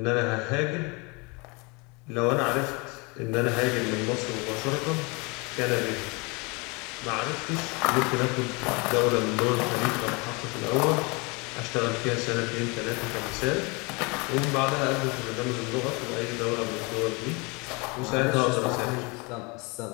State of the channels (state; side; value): quieter; right; 28.6 dB